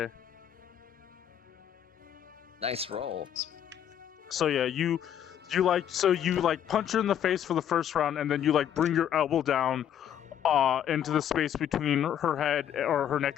Nice roll. So yeah, you punch her in the face for the first round, and then you like bring your elbow down into the space between her head or her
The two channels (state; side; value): quieter; right; 9.9 dB